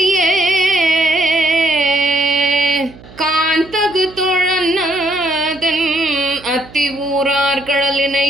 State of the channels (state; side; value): noise; right; hum, 21 dB below the sound